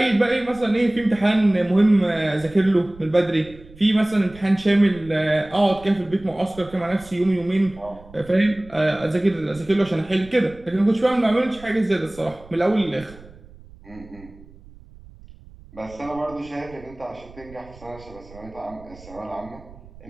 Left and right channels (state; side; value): noise; right; rumble, 21 dB below the sound